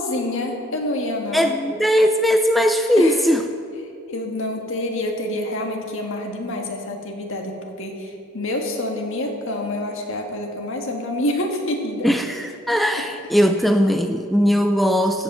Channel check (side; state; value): both; normal; correlation 0.68